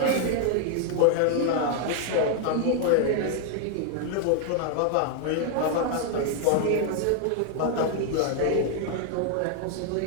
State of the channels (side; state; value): both; different; correlation 0.00